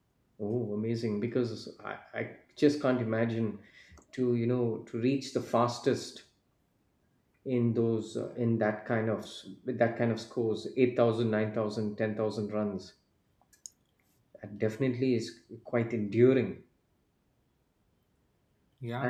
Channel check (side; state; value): both; identical; correlation 1.00